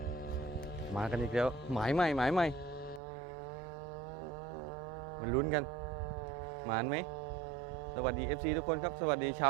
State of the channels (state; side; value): drops out; left; at 3.0 s